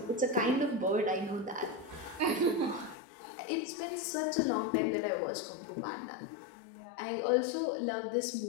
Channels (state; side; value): drops out; right; at 3.0 s